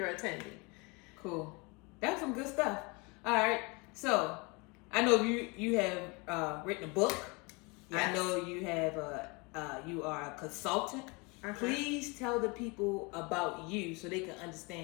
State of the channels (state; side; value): quieter; right; 28.6 dB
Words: attending. Cool. That's some good stuff. All right. So I know you have written a book. Yes. I know you have you are a consultant. Please tell the people about you so they can